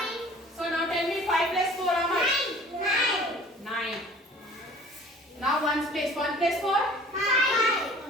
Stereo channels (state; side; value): normal; both; correlation 0.48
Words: So now tell me 5 plus 4 how much? 9. Now ones place. 1 plus 4?